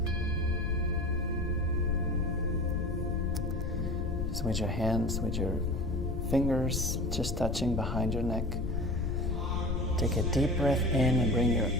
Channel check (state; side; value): noise; left; rumble, 2 dB below the sound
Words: Just with your hands, with your fingers just touching behind your neck. Take a deep breath in and bring your